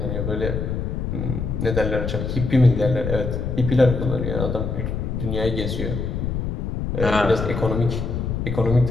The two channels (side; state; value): left; noise; rumble, 2 dB below the sound